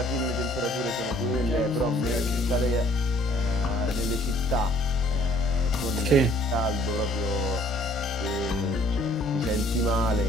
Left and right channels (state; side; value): normal; both; correlation 0.59